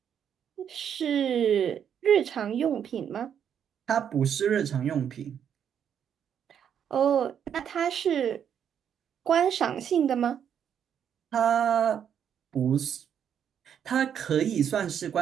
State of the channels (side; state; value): left; quieter; 8.6 dB